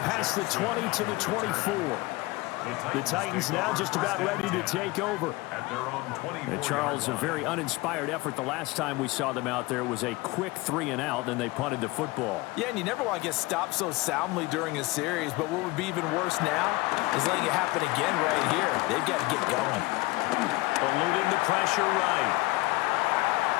past the 20 to the 24. The Titans now just about ready to take over. And Charles, a very uninspired effort the last time we saw them out there was a quick 3-and-out, and they punted the football. Yeah, and you never want to get stopped so soundly during a series, but what would be even worse now is letting it happen again right here. They've got to get going. Eluding the pressure right.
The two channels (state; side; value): quieter; right; 21.8 dB